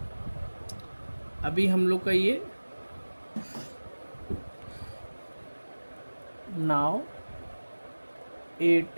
अभी हम लोग का ये now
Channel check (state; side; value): inverted; both; correlation -1.00